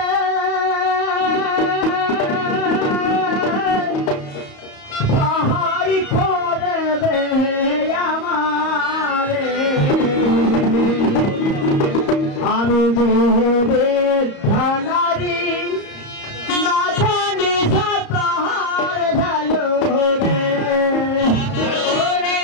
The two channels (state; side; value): late; right; 34 ms